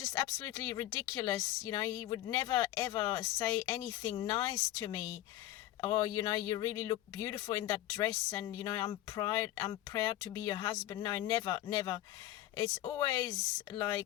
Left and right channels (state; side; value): quieter; right; 14.2 dB